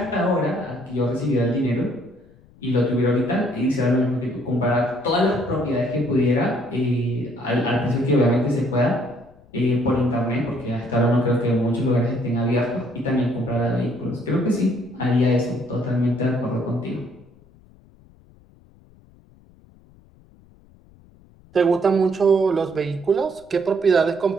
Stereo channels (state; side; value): noise; left; rumble, 27 dB below the sound